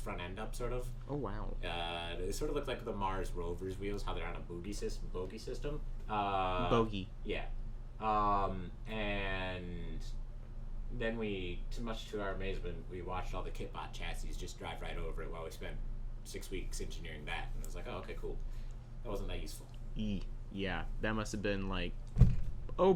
end up, sort of. Oh wow. It sort of looked like the Mars rover's wheels, how they're on a bogey system. Bogey. Yeah. And then we, too much to our amazement, we watched all the Kitbot chassis just drive right over it while we spent 6 weeks engineering that. And it was like, oh, okay, cool. That wasn't that useful. Yeah, that must have been like, oh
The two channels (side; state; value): both; identical; correlation 1.00